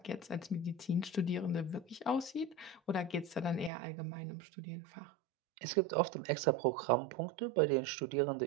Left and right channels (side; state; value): left; drops out; at 3.7 s